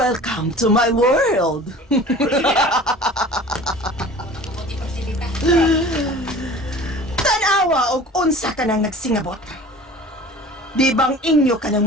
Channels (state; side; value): normal; both; correlation 0.42